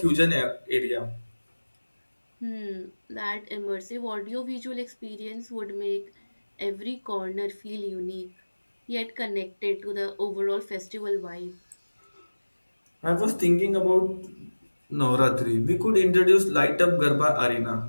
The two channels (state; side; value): inverted; both; correlation -1.00